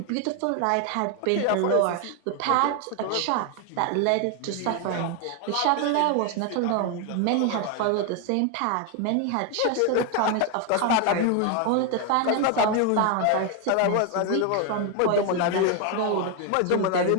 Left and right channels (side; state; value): both; different; correlation 0.01